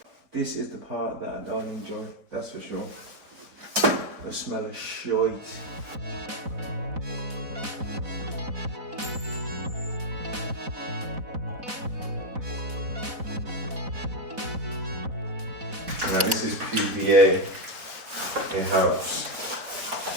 This is the part that I don't enjoy, that's for sure. The smell of shite. Now this is PVA in-house.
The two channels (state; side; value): late; left; 4.1 ms